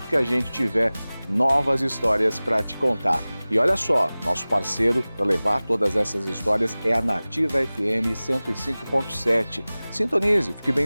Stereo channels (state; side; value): inverted; both; correlation -0.99